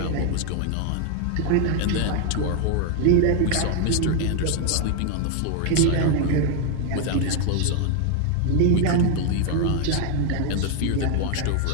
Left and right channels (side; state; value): both; different; correlation 0.01